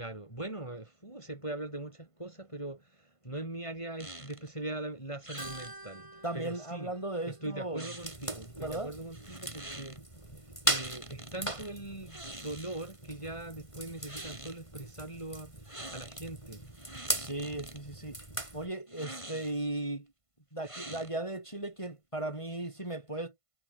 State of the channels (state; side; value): late; right; 1.5 ms